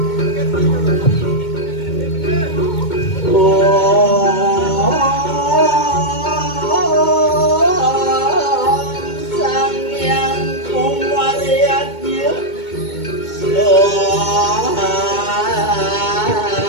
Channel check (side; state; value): right; late; 2.2 ms